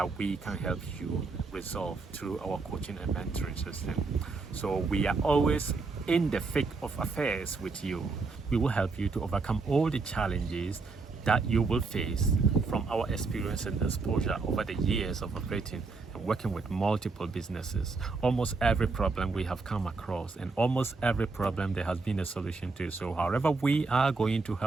we can help you resolve through our coaching and mentoring system. So we are always in the thick of affairs with you. We will help you to overcome all the challenges that you will face from our experience and exposure over the years of operating and working with multiple businesses. Almost every problem we have come across, and almost every problem there has been a solution to. So however we are going to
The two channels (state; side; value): quieter; left; 4.1 dB